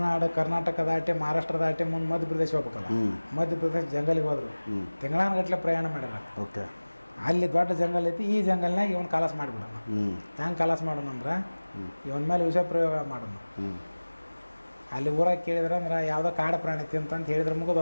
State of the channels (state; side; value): inverted; both; correlation -1.00